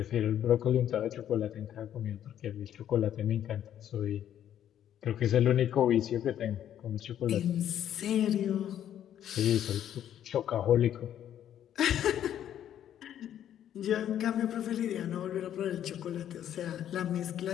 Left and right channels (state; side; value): quieter; right; 10.6 dB